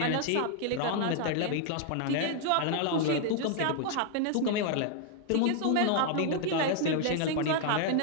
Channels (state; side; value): different; both; correlation 0.00